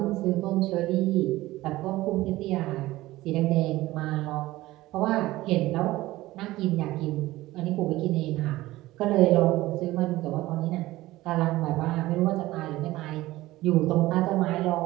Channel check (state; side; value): quieter; left; 17.5 dB